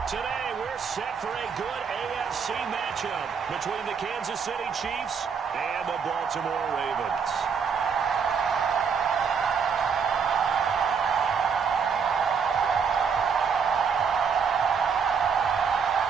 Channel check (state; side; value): quieter; left; 6.3 dB